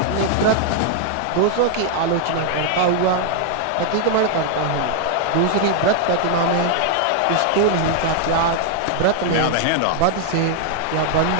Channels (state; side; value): different; both; correlation 0.00